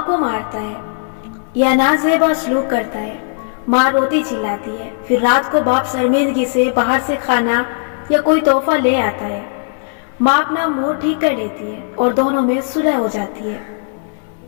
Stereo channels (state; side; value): silent; right; 68 dB below the other